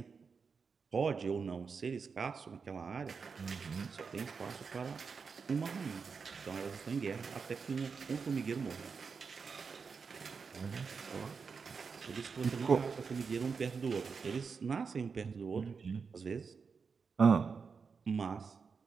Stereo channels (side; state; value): left; quieter; 5.4 dB